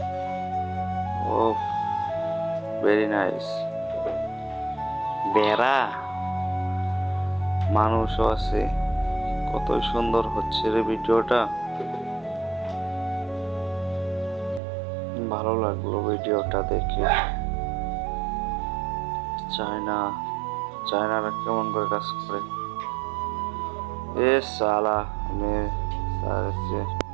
উফ, ভেরি নাইস। বেড়া, মানুষও আছে। কত সুন্দর হচ্ছে রে ভিডিওটা। ভালো লাগলো ভিডিওটা দেখে। চায়নারা কেমন করে কাজ করে। এ সালা,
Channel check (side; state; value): left; drops out; at 14.6 s